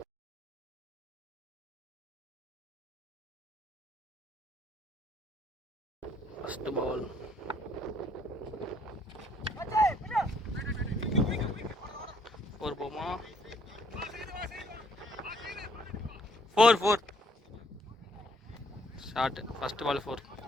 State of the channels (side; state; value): both; normal; correlation 0.65